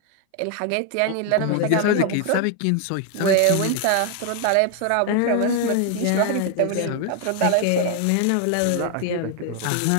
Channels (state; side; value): different; both; correlation 0.01